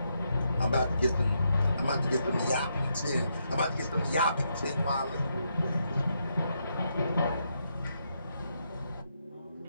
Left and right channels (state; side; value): inverted; both; correlation -0.80